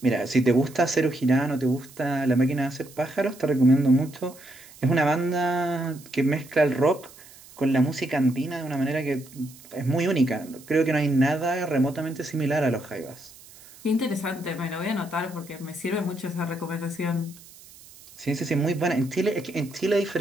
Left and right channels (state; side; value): noise; right; hiss, 21 dB below the sound